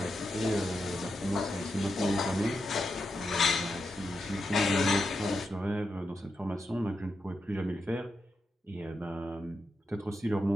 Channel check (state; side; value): normal; both; correlation 0.86